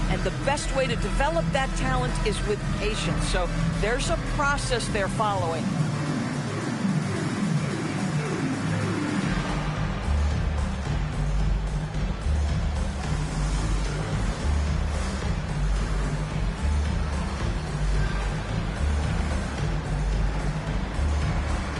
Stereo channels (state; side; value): identical; both; correlation 1.00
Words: And the best way to develop that talent is with patience. So there's a process they're following.